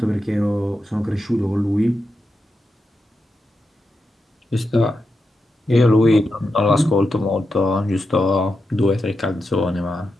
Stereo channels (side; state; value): both; normal; correlation 0.87